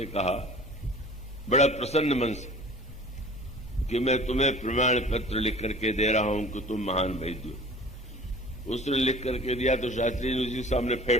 कहा बड़ा प्रसन्न मन से कि मैं तुम्हें प्रमाण पत्र लिख करके दे रहा हूं कि तुम महान वैद्य हो। उसने लिख करके दिया तो शास्त्री ने उसी सामने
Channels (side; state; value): both; normal; correlation 0.45